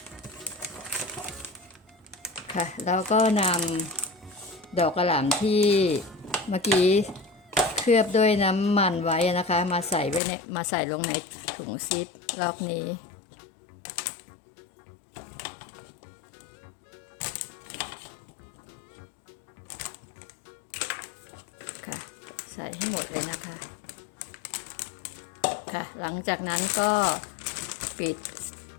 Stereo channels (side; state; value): right; drops out; at 10.2 s